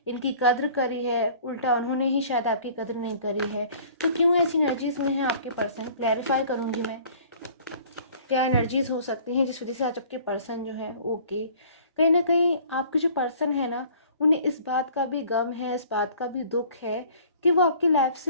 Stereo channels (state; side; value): inverted; both; correlation -0.51